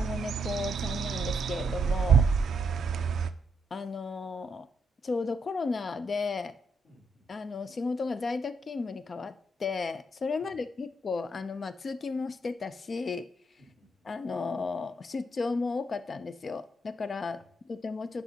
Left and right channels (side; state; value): both; normal; correlation 0.77